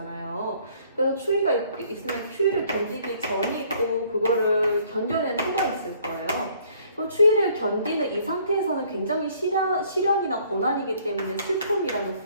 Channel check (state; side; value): inverted; both; correlation -0.61